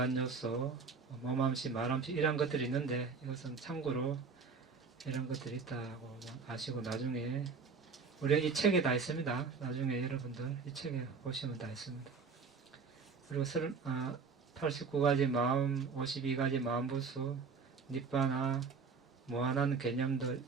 요소, 몸암시, 말암시 이런 것들이 있는데 이것은 참고로 이런 것들이 있다고 아시고 나중에 우리가 이 책에 다 있습니다. 나중에 여러분들 이 책에 보시면 다 있습니다. 그리고 89가지 마음, 52가지 마음부수, 니빠나, 무한한 개념들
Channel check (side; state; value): left; quieter; 5.1 dB